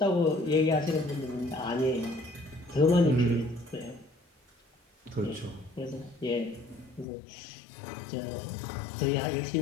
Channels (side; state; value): right; drops out; at 7.1 s